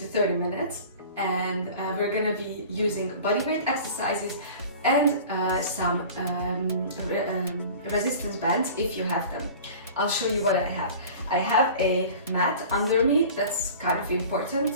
30 minutes, and we're gonna be using bodyweight exercises and some resistance bands if you have them. I'll show you what I have. I have a mat under me. That's kind of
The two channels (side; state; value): both; inverted; correlation -0.41